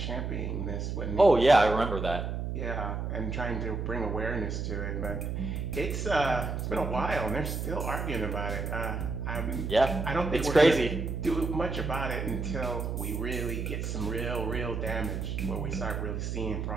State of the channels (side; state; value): right; noise; hum, 3 dB below the sound